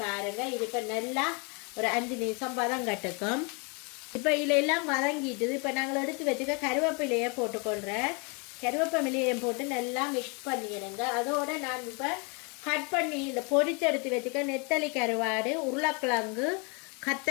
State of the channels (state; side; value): quieter; right; 32.9 dB